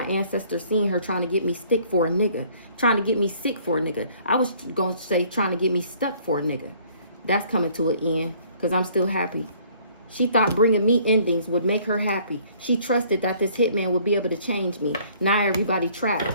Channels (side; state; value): both; inverted; correlation -0.58